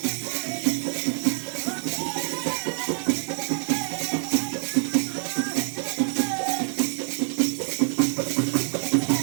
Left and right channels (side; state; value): left; silent; 61 dB below the other